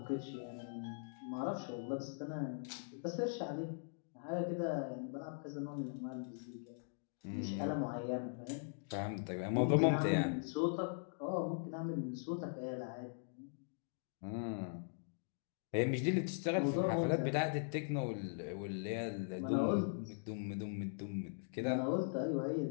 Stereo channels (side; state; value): right; silent; digital silence